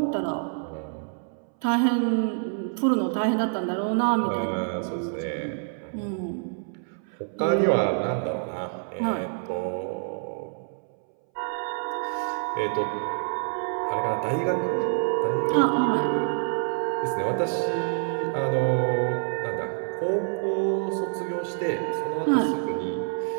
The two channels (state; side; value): silent; left; 60 dB below the other